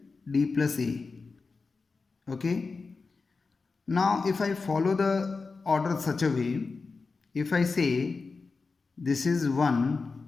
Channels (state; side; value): quieter; right; 4.3 dB